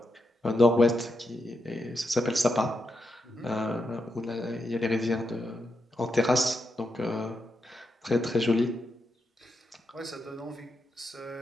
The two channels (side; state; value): both; normal; correlation 0.84